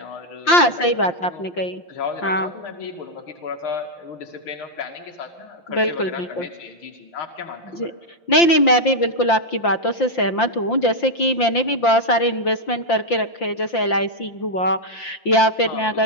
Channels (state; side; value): late; right; 5.8 ms